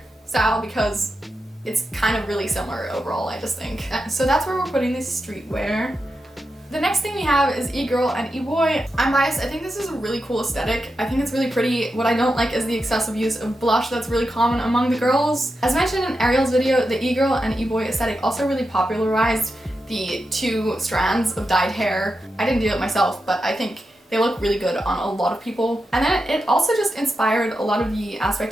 style because it's kind of really similar overall, I just think. So that's where we're putting this streetwear. The next thing we have is e-girl and e-boy. I'm biased, I think this is a really cool aesthetic. I think it's really pretty. What I don't like is the excessive use of blush that's really common among the girls. As mentioned in Ariel's video, the e-girl and e-boy aesthetic also really popularized the two strands of dyed hair. I didn't do it myself, but I think they look really good on a lot of people. And then it also just inspired a lot of the aspect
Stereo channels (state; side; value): normal; both; correlation 0.88